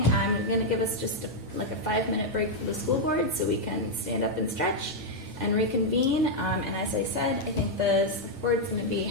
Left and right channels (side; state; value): both; normal; correlation -0.02